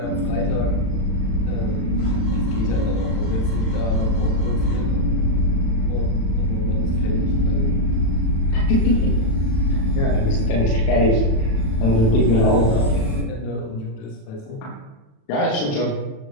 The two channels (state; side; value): late; right; 36 ms